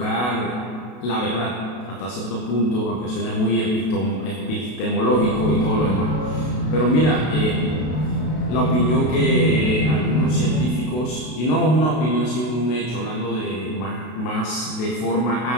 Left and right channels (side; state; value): right; late; 32 ms